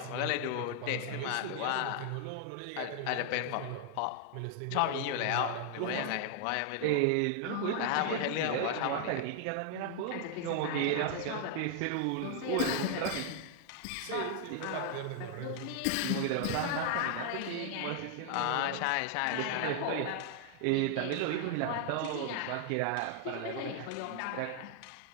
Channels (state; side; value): different; both; correlation 0.00